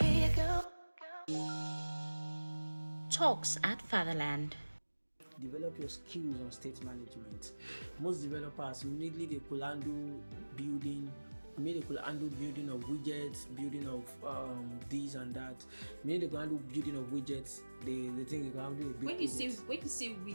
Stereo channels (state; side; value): inverted; both; correlation -1.00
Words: Talks at Fatherland. Develop your skills on state management. Most developers immediately they could handle building of widgets, building of this and that. Maybe they can handle building of widgets. They think they can handle a big when you say